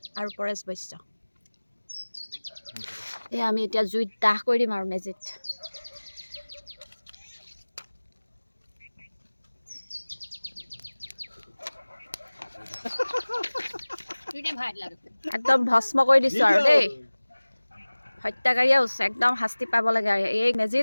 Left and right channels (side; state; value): both; inverted; correlation -1.00